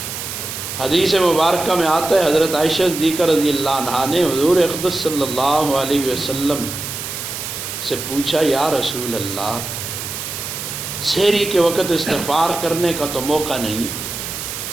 حدیث مبارکہ میں آتا ہے حضرت عائشہ صدیقہ رضی اللہ عنہا نے حضور اقدس صلی اللہ علیہ وسلم سے پوچھا یا رسول اللہ، سحری کے وقت استغفار کرنے کا تو موقع نہیں،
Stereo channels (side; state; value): right; noise; hiss, 6 dB below the sound